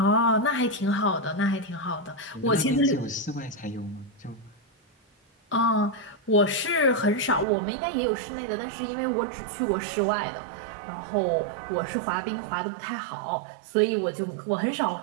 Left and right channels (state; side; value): drops out; left; at 7.5 s